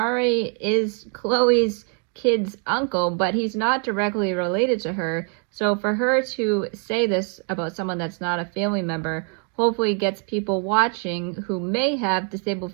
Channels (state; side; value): quieter; left; 39.4 dB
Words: is Chloe's kid's uncle, but he's not directly related to her. So for her to say this about someone that's not a family member hopefully gets people watching who may have disabled